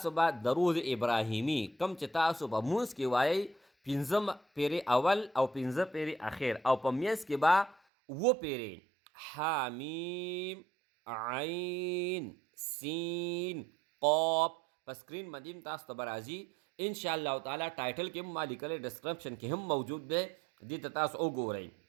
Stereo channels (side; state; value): left; drops out; at 7.8 s